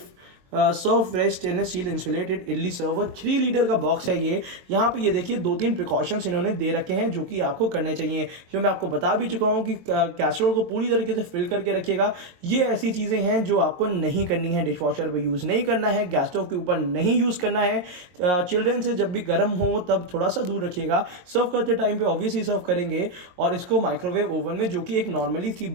Serve fresh stainless steel insulated idli server 3 litre का बॉक्स है ये। यहाँ पे ये देखिए 2-3 प्रिकॉशंस इन्होंने दे रखे हैं जो कि आपको करने चाहिए, जो मैं आपको बता भी चुका हूँ कि कैसरोल को पूरी तरीके से फिल करके रखिएगा। ये ऐसी चीज़ें हैं जो आपको नहीं करनी है, डिश वॉशर पर यूज़ नहीं करना है, गैस स्टोव के ऊपर नहीं यूज़ करना है। चिल्ड्रन से जब भी गर्म हो तब थोड़ा सा दूर रखिएगा। सर्व करते टाइम पे ऑब्वियसली सर्व करेंगे और इसको माइक्रोवेव ओवन में, जो कि एक नॉर्मली सी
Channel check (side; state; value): left; late; 22 ms